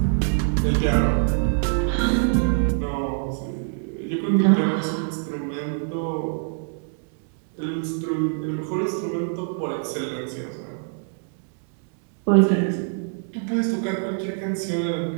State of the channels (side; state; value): left; silent; digital silence